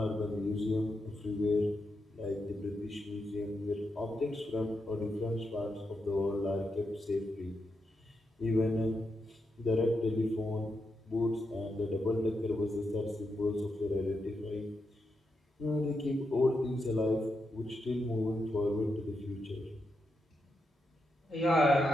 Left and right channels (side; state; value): both; normal; correlation 0.84